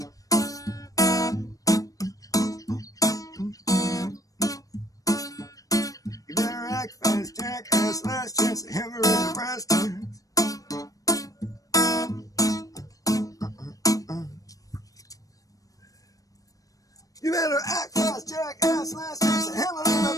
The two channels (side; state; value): right; late; 0.17 ms